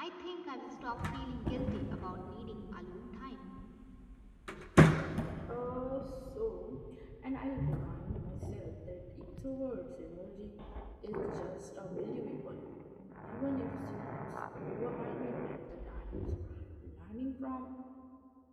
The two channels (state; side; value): identical; both; correlation 1.00